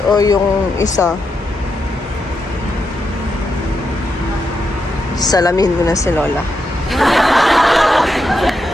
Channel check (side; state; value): both; normal; correlation 0.84